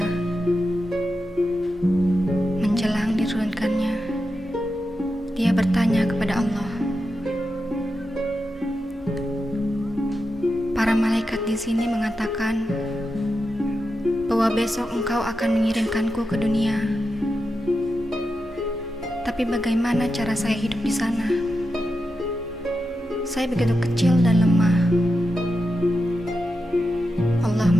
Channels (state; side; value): normal; both; correlation 0.89